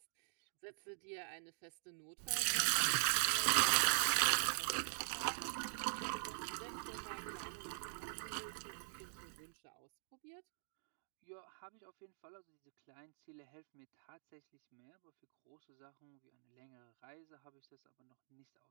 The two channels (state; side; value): silent; left; digital silence